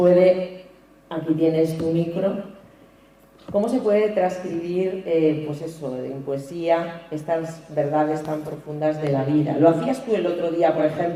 aquí tienes tu micro, ¿Cómo se puede transcribir, pues eso, en poesía, estas verdades tan profundas de la vida? Lo hacías tú el otro día, por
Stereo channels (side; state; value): both; identical; correlation 1.00